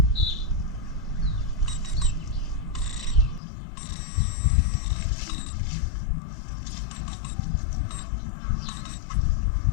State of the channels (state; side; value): drops out; right; at 3.4 s